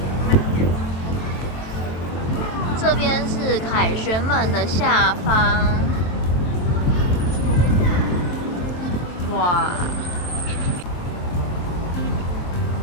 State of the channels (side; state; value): right; late; 23 ms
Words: 这边是凯旋门的下方，哇！